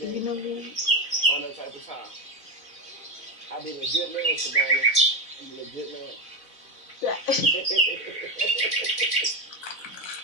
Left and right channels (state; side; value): late; right; 4.0 ms